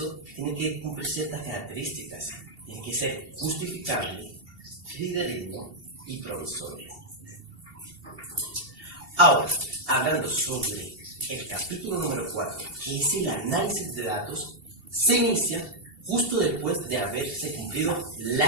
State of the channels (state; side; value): late; left; 2.7 ms